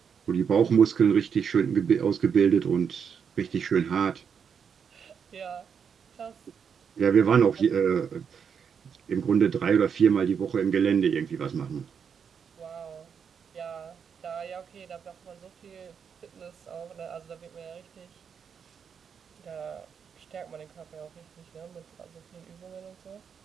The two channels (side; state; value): left; quieter; 7.0 dB